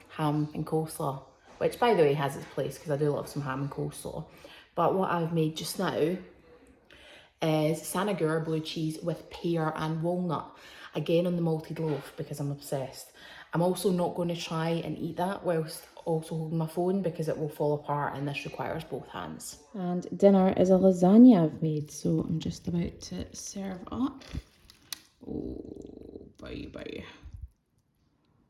ham and coleslaw, which by the way has its place because I do love some ham and coleslaw. But what I've made just now is Sanagur blue cheese with pear and walnut, again on the malted loaf because I'm obsessed. I'm also not going to try and eat that whilst also holding my phone because it will fall apart, and this requires both hands. And dinner is a lasagna I've made, so I'm just about to serve up. Oh, baby.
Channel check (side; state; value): both; identical; correlation 1.00